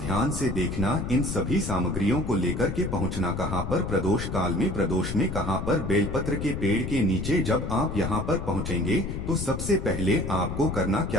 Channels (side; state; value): left; noise; rumble, 4 dB below the sound